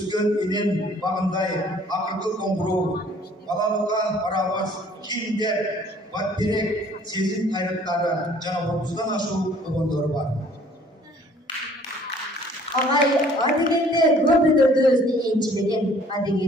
енен бағындай, ақырғы қоңырау, балалыққа барабыз, киімдер, батберек, сезім қайраттары, жаңа отыздан ашу ұбандары бар. Ағай, адегенде көп өдірді өзіне енчілеген,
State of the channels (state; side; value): normal; both; correlation 0.56